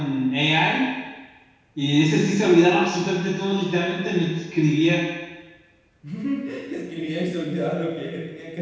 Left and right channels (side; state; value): both; identical; correlation 1.00